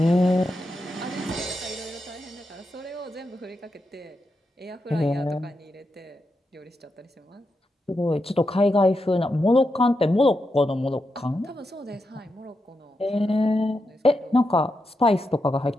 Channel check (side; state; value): both; normal; correlation 0.86